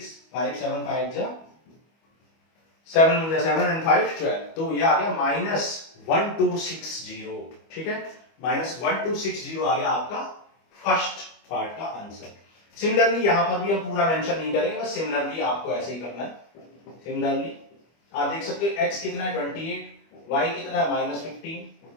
5 7 5 जा 7 में 7 एंड 5 12, तो ये आ गया -1260। ठीक है, -1260 आ गया आपका फर्स्ट पार्ट का आंसर। सिमिलरली यहां पर भी हम पूरा मेंशन नहीं करेंगे, बस सिमिलरली आपको ऐसे ही करना है। सिमिलरली आप देख सकते हो x कितना है 28, y कितना है -15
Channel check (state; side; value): late; right; 25 ms